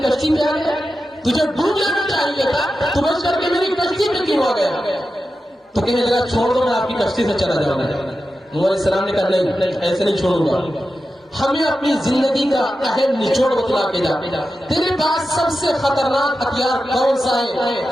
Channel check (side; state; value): both; normal; correlation 0.91